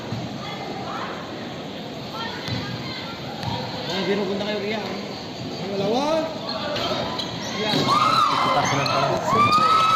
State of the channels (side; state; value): both; identical; correlation 1.00